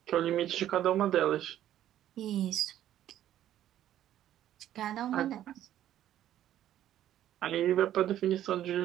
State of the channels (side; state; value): left; quieter; 12.0 dB